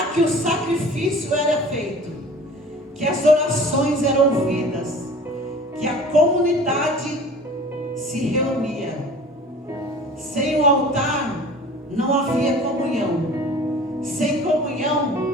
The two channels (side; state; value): both; normal; correlation 0.44